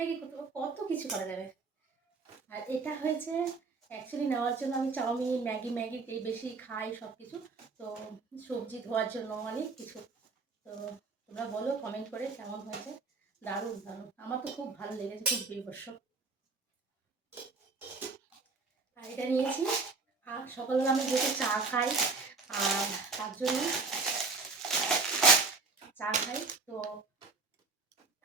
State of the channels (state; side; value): quieter; left; 4.1 dB